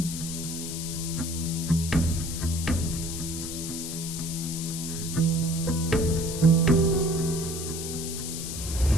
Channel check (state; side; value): noise; left; hiss, 6 dB below the sound